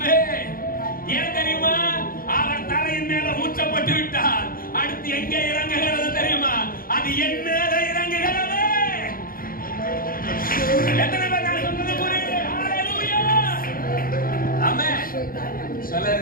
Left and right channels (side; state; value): right; late; 0.42 ms